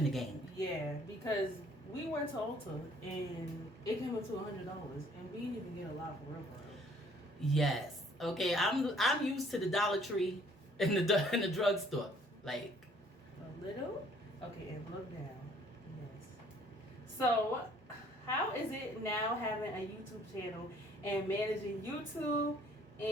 the game. Yeah, because we went to Ulta and it came up to $100, and we didn't even get a lot for real. Yes. Okay. I'm used to the Dollar Tree in the drugstore. Like A little. Okay, and look down. Yes. So, how is it now having a YouTube channel and managing YouTube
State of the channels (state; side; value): normal; both; correlation 0.60